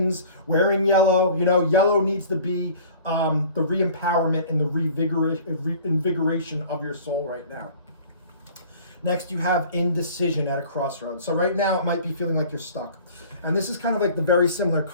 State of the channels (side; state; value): both; inverted; correlation -0.47